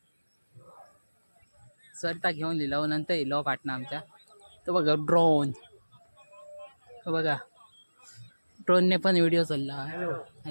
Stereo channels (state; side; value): inverted; both; correlation -1.00